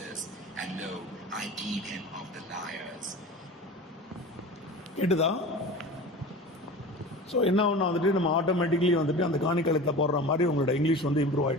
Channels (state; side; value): normal; both; correlation 0.35